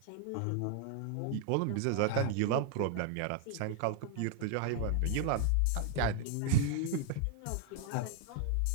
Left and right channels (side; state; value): both; different; correlation 0.00